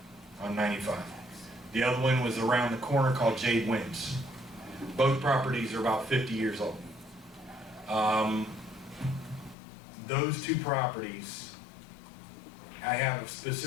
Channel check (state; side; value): drops out; right; at 9.6 s